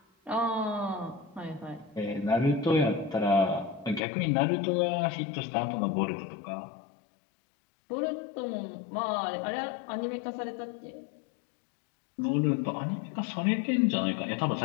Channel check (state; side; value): drops out; right; at 4.0 s